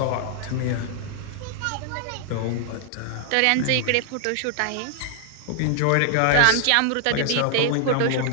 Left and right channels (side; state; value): both; different; correlation 0.00